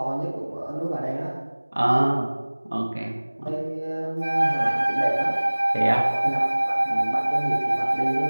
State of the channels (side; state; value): both; inverted; correlation -1.00